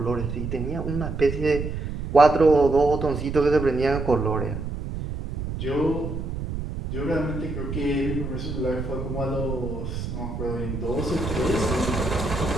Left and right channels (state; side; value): noise; right; rumble, 5 dB below the sound